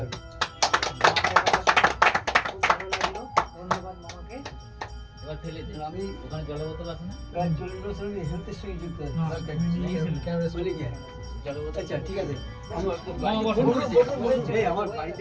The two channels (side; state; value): both; identical; correlation 1.00